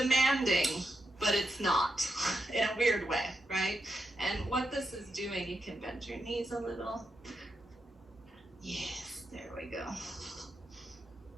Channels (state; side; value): normal; both; correlation 0.85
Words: but it's not, in a weird way, right? And what this is doing, you can bend your knees a little. Yes, there we go.